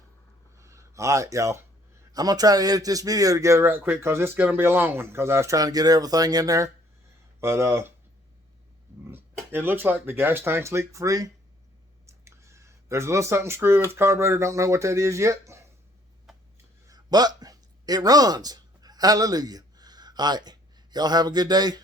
All right, y'all. I'm going to try to edit this video together right quick because it's going to be a long one because I was trying to get everything in there. But it looks like the gas tank's leak free. There's a little something screwed with the carburetor. Don't know what that is yet. but it runs. Hallelujah. All right. Y'all have a good day.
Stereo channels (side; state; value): both; normal; correlation 0.62